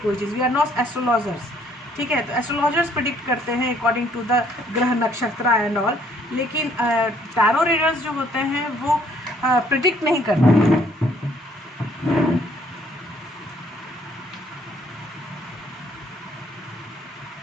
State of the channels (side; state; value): both; normal; correlation 0.64